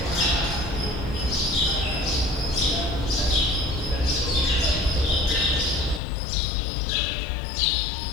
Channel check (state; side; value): drops out; right; at 6.0 s